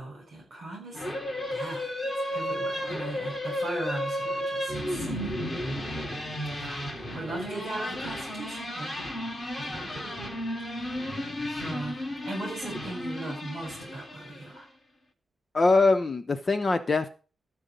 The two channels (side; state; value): both; normal; correlation 0.87